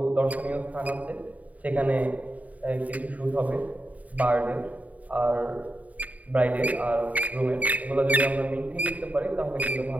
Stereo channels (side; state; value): left; late; 0.072 ms